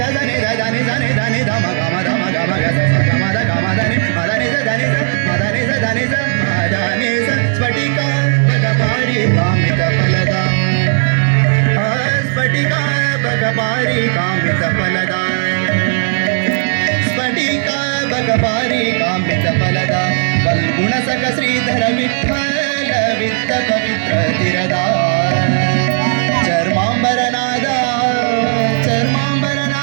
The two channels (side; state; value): left; silent; digital silence